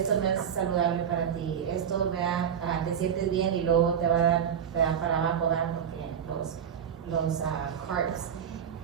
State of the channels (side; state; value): left; quieter; 8.3 dB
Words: no es saludable para ti, esto, ¿verdad? Te sientes bien y luego te va a dar, te da para abajo, ¿verdad? Porque los carbs.